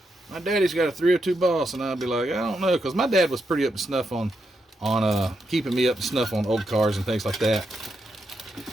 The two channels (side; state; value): both; normal; correlation 0.83